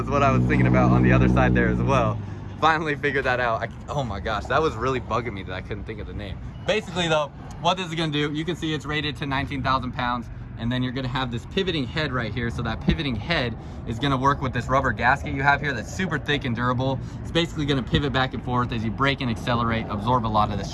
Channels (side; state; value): both; identical; correlation 1.00